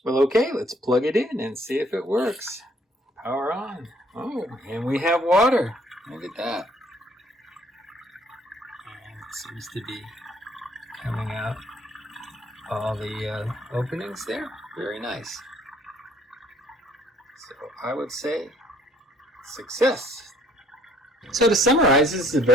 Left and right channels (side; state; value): both; normal; correlation 0.62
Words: Well, okay, let's plug it in and see if it works. Power on. Oh, and we have water. Look at that. And it seems to be coming out all the openings there. Very nice. So I would say success. So to summarize, this is a